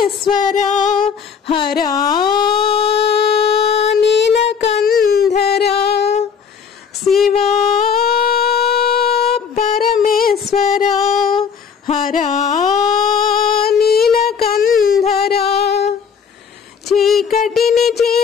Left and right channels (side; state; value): right; quieter; 6.6 dB